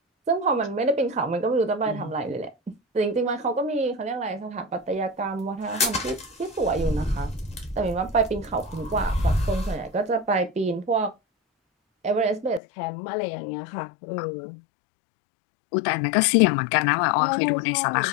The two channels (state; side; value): drops out; right; at 12.6 s